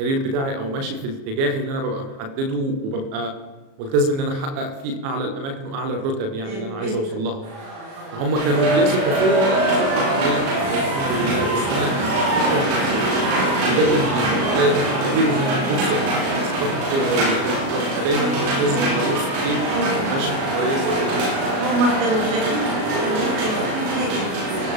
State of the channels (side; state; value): left; late; 37 ms